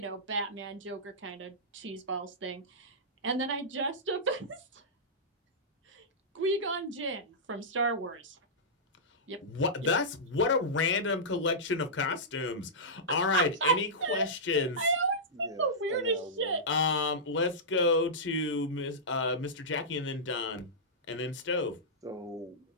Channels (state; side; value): normal; both; correlation -0.14